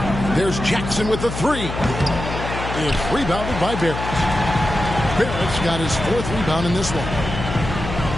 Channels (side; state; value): left; noise; hum, 6 dB below the sound